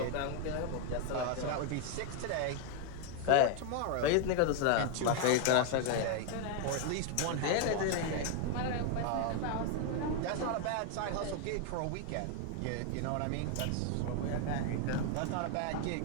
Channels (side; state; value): both; different; correlation 0.00